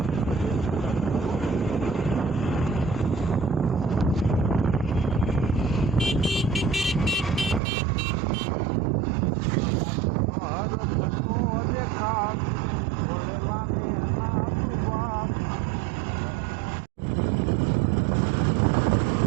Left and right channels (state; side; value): drops out; left; at 7.6 s